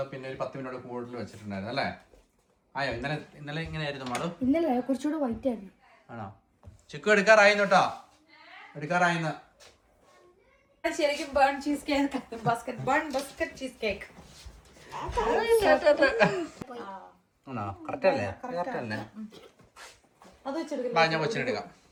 പിന്നെ ഒരു 10 മിനിറ്റ് കൂടുതൽ വെച്ചിട്ടുണ്ടായിരുന്നു അല്ലേ? ആയോ ഇന്നലെ ഇങ്ങനെയായിരുന്നു മാഡു? ഇന്നലെ കുറച്ചുകൂടെ വൈറ്റ് ആയിരുന്നു. ആണോ? ചിക്കു എടുക്കാറായിരുന്നു കേട്ടോ, എടുക്കാറായിന്ന്. ശരിക്കും burn cheesecake, Basque cheesecake. ആണോ? കറക്റ്റ് അല്ലേ? അത് വെച്ചെടുക്കാം. ഞാൻ കൊച്ചിനെടുക്കാം.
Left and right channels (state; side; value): identical; both; correlation 1.00